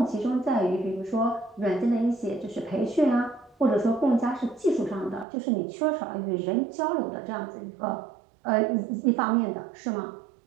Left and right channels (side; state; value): left; drops out; at 5.2 s